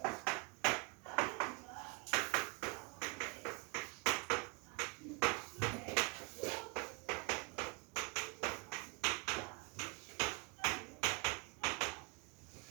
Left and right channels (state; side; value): quieter; left; 30.3 dB